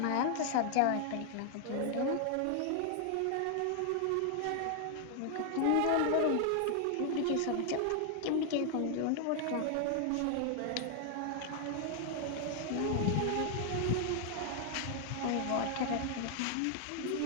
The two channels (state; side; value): different; both; correlation 0.00